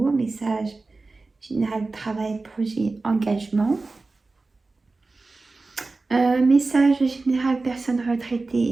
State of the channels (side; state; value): left; quieter; 3.6 dB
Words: message général travail, projet, engagement. Message général personne